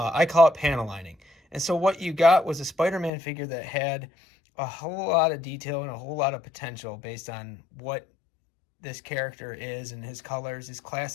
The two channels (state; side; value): drops out; right; at 3.1 s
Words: call it panel lining. And so what you got was a Spider-Man figure that had a whole lot of detail and a whole lot of potential based on what this character is and his colors, his